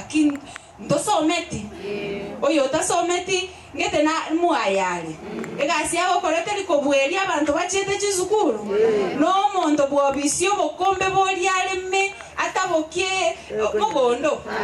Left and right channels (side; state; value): both; identical; correlation 1.00